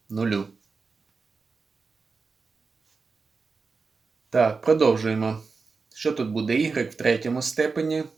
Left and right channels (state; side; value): quieter; left; 4.6 dB